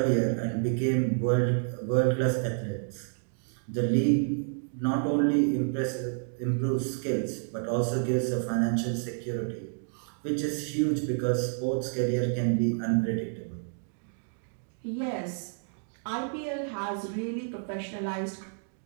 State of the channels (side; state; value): left; silent; digital silence